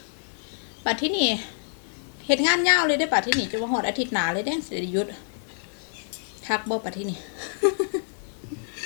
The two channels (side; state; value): right; silent; digital silence